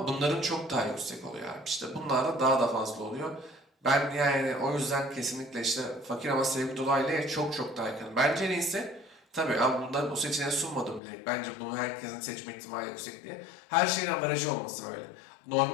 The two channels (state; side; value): drops out; right; at 11.0 s